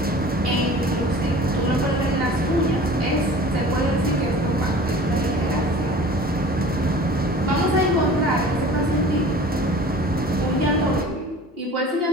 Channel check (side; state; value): both; normal; correlation 0.43